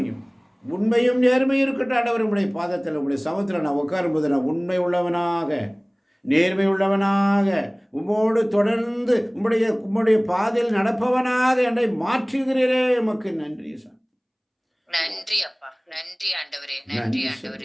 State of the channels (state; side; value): identical; both; correlation 1.00